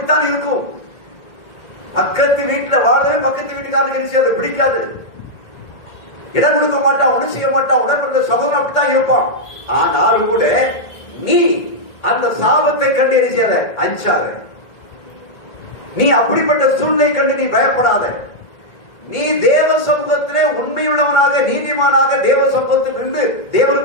இருக்கும். பக்கத்து வீட்டுல வாழவே பக்கத்து வீட்டுக்காரனுக்கு அதை பிடிக்காது, இடம் கொடுக்க மாட்டான், ஒன்றும் செய்ய மாட்டான், உடற்பட சகோதரன் அப்படித்தான் இருப்பான். ஆனாலும் கூட நீ அந்த சாபத்தை கண்டு எரிச்சாத, அஞ்சாத. நீ அப்படிப்பட்ட சூழ்நிலை கண்டு நீ பயப்படாத. நீ தேவ சமூகத்திலே உண்மையுள்ளவனாக நீதிமானாக தேவ சமூகத்தில் இருந்து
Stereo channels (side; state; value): right; late; 1.8 ms